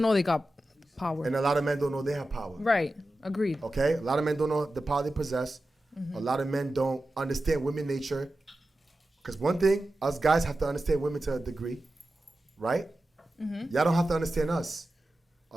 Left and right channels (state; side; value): normal; both; correlation 0.93